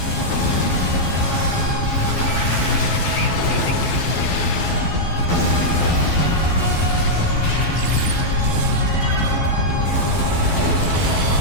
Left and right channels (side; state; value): right; late; 12 ms